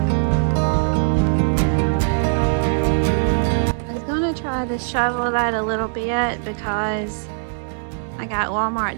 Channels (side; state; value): left; silent; digital silence